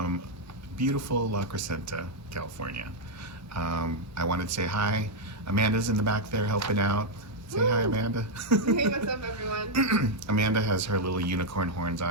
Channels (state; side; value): normal; both; correlation -0.01